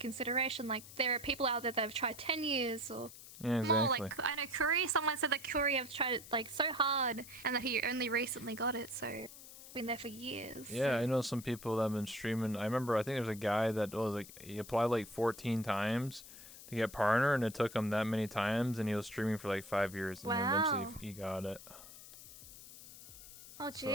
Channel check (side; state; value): left; noise; hiss, 16 dB below the sound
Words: Like, there are people out there that have tried 10 years or yeah, exactly. more. Like, I know Curry, someone said that Curry have tried it like so hard and that he only recently got it, so been there for years. Yeah, I know some people that have been streaming. I remember, I think there's a guy that was like, he applied like 14 times to get partner, and it took him that many times, and he was streaming for like 5 years, and then eventually he got it. Oh,